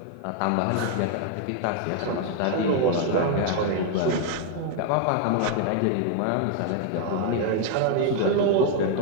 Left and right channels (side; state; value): both; different; correlation 0.00